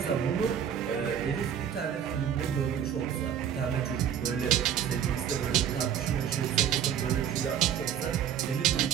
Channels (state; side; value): quieter; left; 9.0 dB